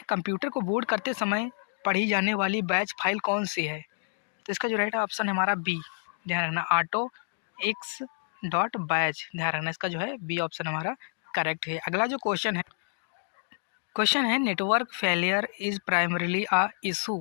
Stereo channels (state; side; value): silent; right; digital silence